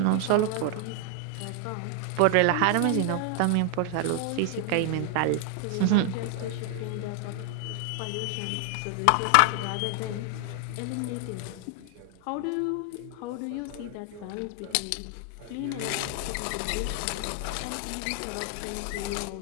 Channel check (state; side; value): different; both; correlation 0.00